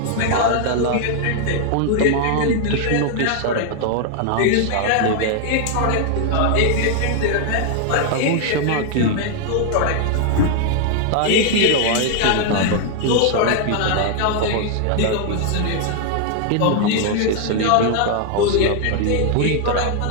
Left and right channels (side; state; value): both; different; correlation 0.00